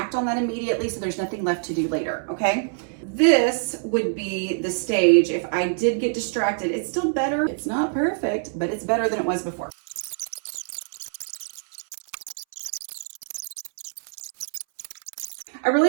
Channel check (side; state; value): left; silent; 60 dB below the other